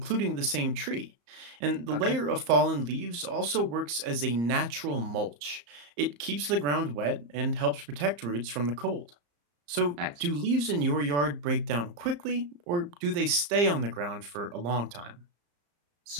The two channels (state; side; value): late; left; 34 ms